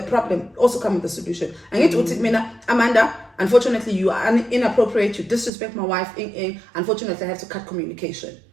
problem, also come with the solution. I need to Amanda, unfortunately, you are inappropriate, you disrespect my wife, unfortunately, I have to cut communication.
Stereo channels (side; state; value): left; drops out; at 5.5 s